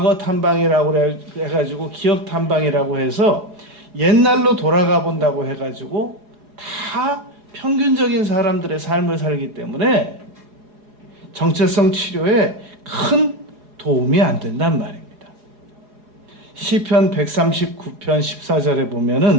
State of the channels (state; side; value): late; left; 4.8 ms